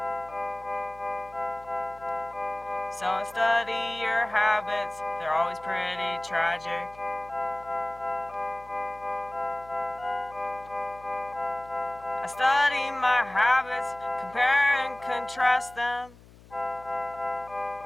So I study your habits, they're always pretty tragic. I study my habits, compare and contrast them.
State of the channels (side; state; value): left; noise; hum, 23 dB below the sound